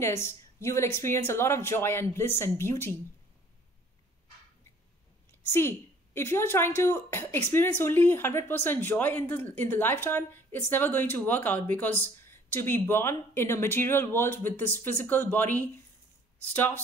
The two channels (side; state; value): both; normal; correlation 0.55